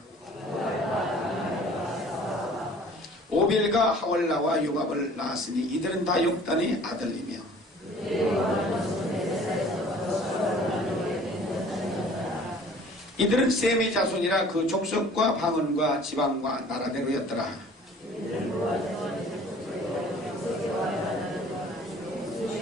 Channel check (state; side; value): normal; both; correlation 0.50